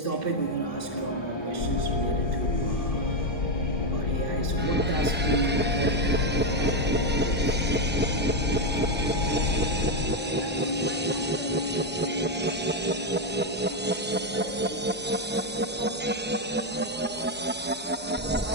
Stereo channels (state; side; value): normal; both; correlation 0.05